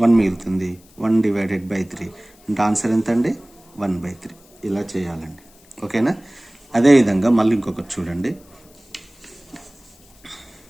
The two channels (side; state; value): left; noise; hiss, 28 dB below the sound